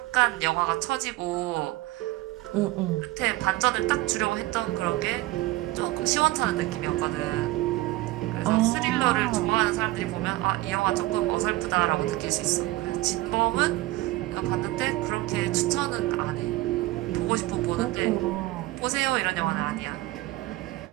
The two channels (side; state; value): left; quieter; 18.6 dB